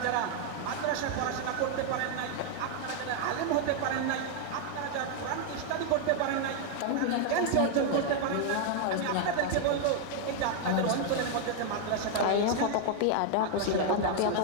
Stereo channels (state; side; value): different; both; correlation 0.00